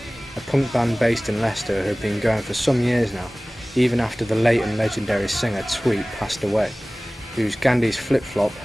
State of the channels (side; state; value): both; normal; correlation 0.98